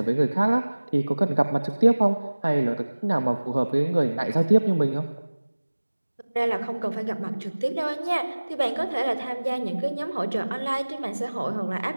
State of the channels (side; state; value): both; inverted; correlation -1.00